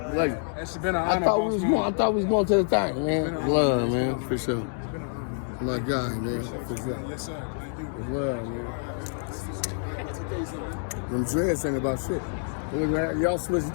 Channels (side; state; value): right; silent; digital silence